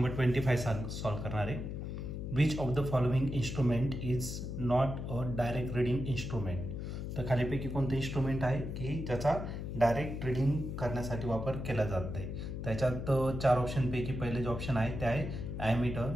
25 सॉल्व करणार आहे. Which of the following instrument is not a direct reading instrument. तर खालीपैकी कोणतं इन्स्ट्रुमेंट आहे की ज्याचा डायरेक्ट रीडिंग करण्यासाठी वापर केला जात नाही. त्याच्यात 4 ऑप्शनपैकी पहिले जे ऑप्शन आहे ते आहे ॲमीटर,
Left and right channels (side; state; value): left; noise; hum, 5 dB below the sound